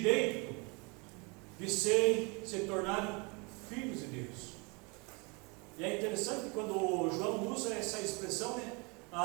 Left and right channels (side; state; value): left; quieter; 30.4 dB